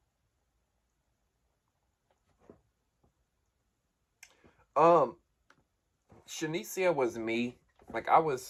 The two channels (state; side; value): identical; both; correlation 1.00